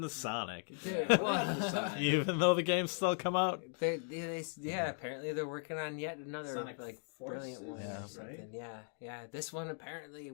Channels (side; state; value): right; silent; 53 dB below the other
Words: to Sonic? Yeah, what happened to Sonic? Even though the games still come out. Yeah, apparently they're working on yet another Sonic like Forces, brilliant one or right? something. Yeah. This one apparently